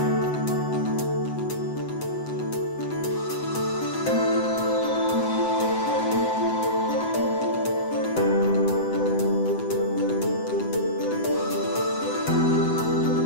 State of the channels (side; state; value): right; late; 7.9 ms